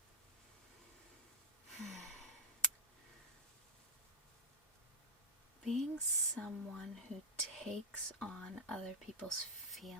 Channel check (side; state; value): both; normal; correlation -0.10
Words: Being someone who takes on other people's